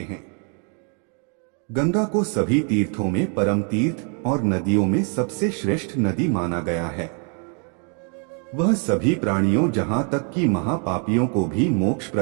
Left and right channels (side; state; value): left; quieter; 39.7 dB